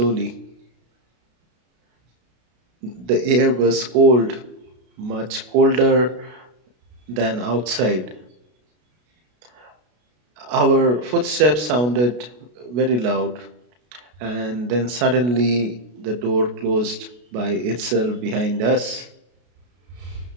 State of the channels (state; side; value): late; left; 33 ms